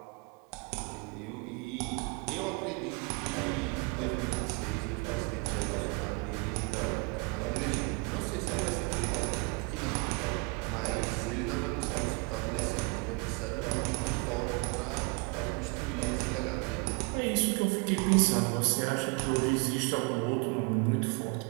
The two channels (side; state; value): left; quieter; 30.9 dB